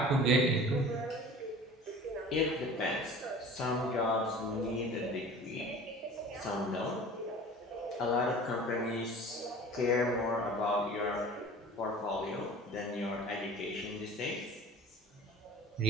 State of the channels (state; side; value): normal; both; correlation 0.42